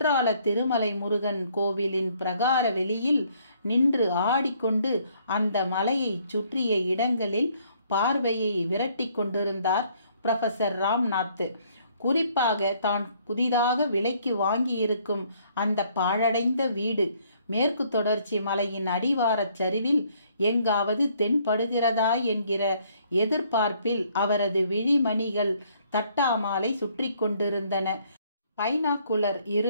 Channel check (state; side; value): inverted; both; correlation -0.65